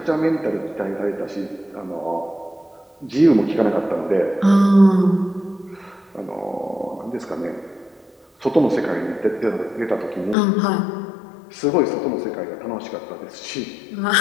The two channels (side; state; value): right; drops out; at 10.4 s